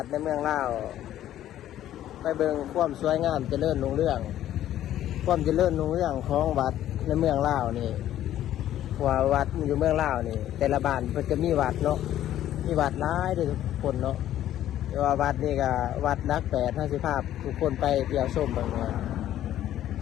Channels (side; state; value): right; quieter; 12.3 dB